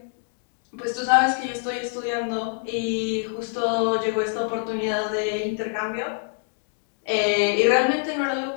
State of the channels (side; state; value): right; silent; 56 dB below the other